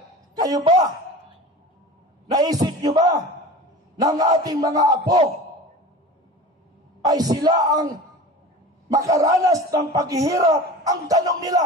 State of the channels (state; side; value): normal; both; correlation 0.35